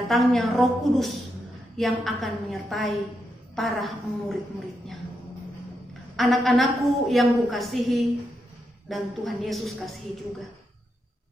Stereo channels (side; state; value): both; normal; correlation 0.83